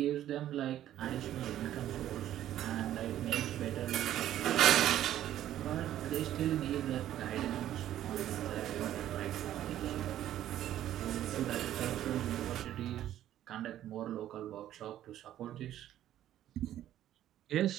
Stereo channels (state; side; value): quieter; left; 12.2 dB